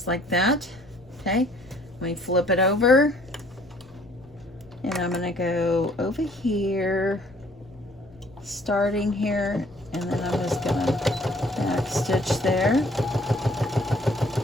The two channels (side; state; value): left; noise; rumble, 28 dB below the sound